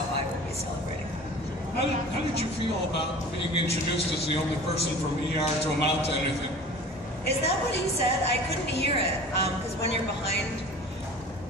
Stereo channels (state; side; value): normal; both; correlation 0.41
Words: I will be celebrating. How did you feel about being introduced as the only person from ER to amount to anything? Is that what he said? I couldn't hear it, because when you're behind,